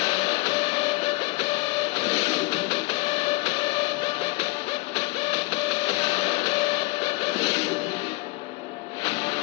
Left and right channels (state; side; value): quieter; right; 24.6 dB